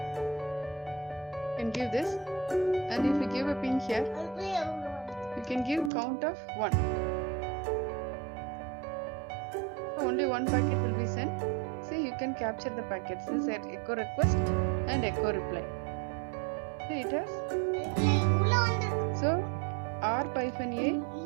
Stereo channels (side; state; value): left; drops out; at 5.9 s